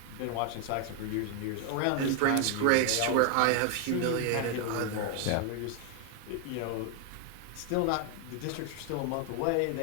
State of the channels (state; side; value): different; both; correlation 0.00